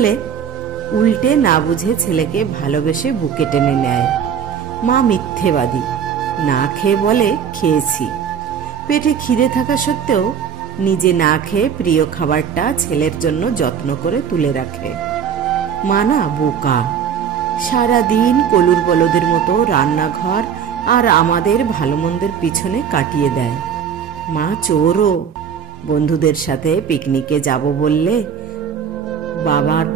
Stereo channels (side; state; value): left; quieter; 7.8 dB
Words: উল্টে না বুঝে ছেলেকে ভালোবেসে বুকে টেনে নেয়। মা মিথ্যেবাদী, না খেয়ে বলে খেয়েছি। পেটে খিদে থাকা সত্ত্বেও নিজে না খেয়ে প্রিয় খাবারটা ছেলের জন্য যত্ন করে তুলে রাখে। মা না বোকা, সারাদিন কলুর বলদের মতো রান্নাঘর আর আমাদের ভালো মন্দের পিছনে কাটিয়ে দেয়। মা চোরও, বন্ধুদের সাথে পিকনিকে যাব বললে বাবার